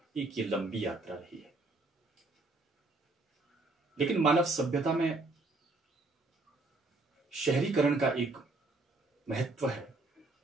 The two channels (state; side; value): quieter; left; 3.2 dB